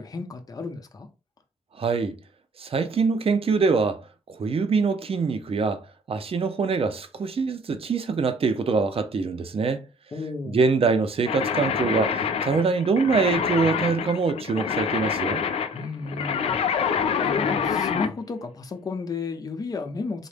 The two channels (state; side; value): normal; both; correlation 0.52